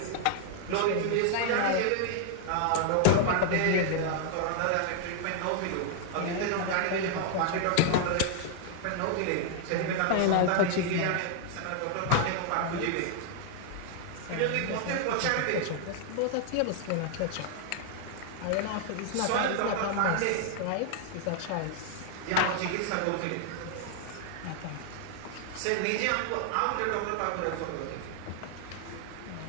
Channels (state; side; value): different; both; correlation 0.00